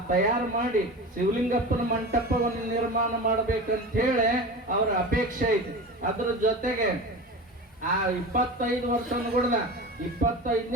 ತಯಾರು ಮಾಡಿ ಶಿವಲಿಂಗಪ್ಪನ ಮಂಟಪವನ್ನು ನಿರ್ಮಾಣ ಮಾಡ್ಬೇಕಂತ ಹೇಳಿ ಅವ್ರ ಅಪೇಕ್ಷೆ ಐತಿ. ಅದ್ರ ಜೊತೆಗೆ ಆ 25 ವರ್ಷ ಅನ್ಕೊಡ್ದ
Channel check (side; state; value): both; normal; correlation 0.30